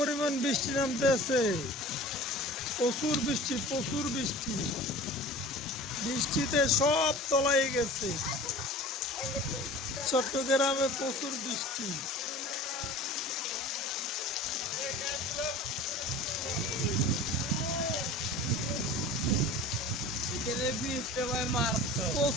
বৃষ্টি নামতে আছে। প্রচুর বৃষ্টি, প্রচুর বৃষ্টি। বৃষ্টিতে সব তলায় গেছে। চট্টগ্রামে প্রচুর বৃষ্টি।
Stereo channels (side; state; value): both; normal; correlation 0.40